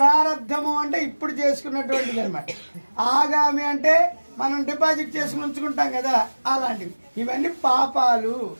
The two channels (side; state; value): both; inverted; correlation -1.00